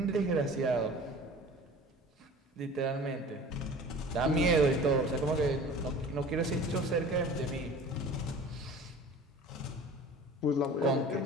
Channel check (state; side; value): normal; both; correlation 0.42